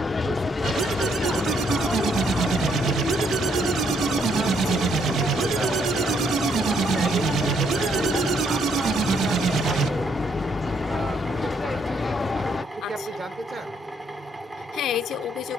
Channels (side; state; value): both; normal; correlation 0.71